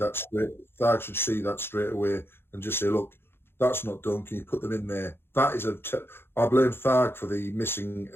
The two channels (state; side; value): late; right; 0.11 ms